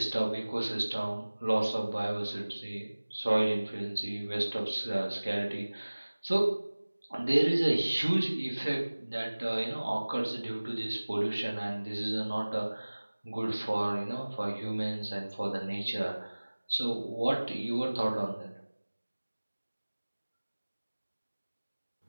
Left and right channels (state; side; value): inverted; both; correlation -1.00